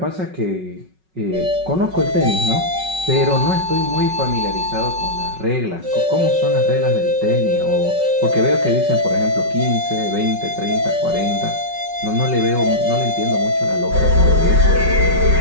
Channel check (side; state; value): left; late; 5.4 ms